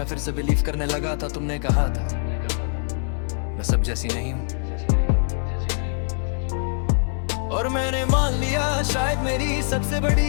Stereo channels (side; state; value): right; silent; digital silence